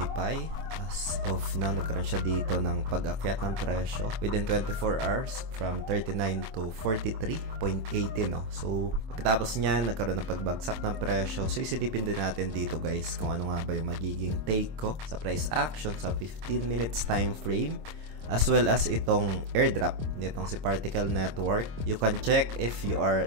Pi. As of now, nagkaroon siya dito ng pag-akyat ng presyo within 24 hours from 39 to 43.80 no. So, pagkatapos niyan, nagkaroon ng pagbagsak ng presyo. So, isilipin din natin dito guys kung ano nga ba yung magiging take ko sa price action sa 15 minutes time frame, as well as itong airdrop nitong si Particle Network. You can check if you are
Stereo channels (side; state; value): left; late; 26 ms